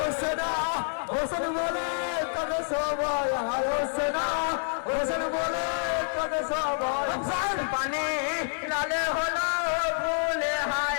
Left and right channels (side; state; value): right; silent; 59 dB below the other